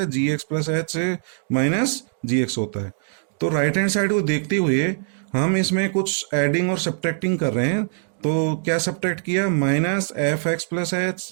जी एक्स प्लस एच से माइनस जी एक्स होता है। तो राइट हैंड साइड को देखते हुए हम इसमें कुछ एडिंग और सब्ट्रैक्टिंग कर रहे हैं। तो क्या सब्ट्रैक्ट किया, minus f x plus h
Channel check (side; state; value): left; silent; digital silence